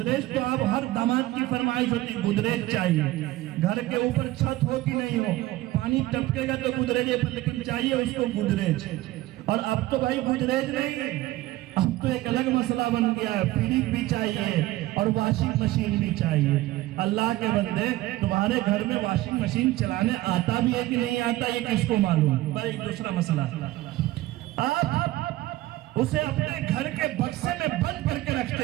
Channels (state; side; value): quieter; left; 16.9 dB